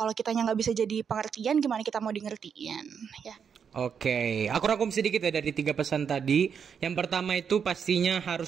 kitanya nggak bisa jadi pengertian, gimana kita mau di ngertiin ya? Oke, aku rangkum sedikit ya dari 3 pesan tadi. Yang pertama itu pastinya harus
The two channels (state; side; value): quieter; left; 7.1 dB